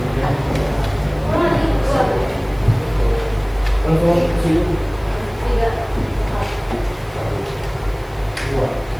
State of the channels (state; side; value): noise; left; hiss, 28 dB below the sound